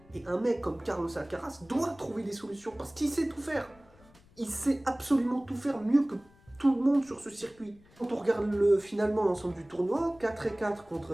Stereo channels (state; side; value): noise; left; rumble, 27 dB below the sound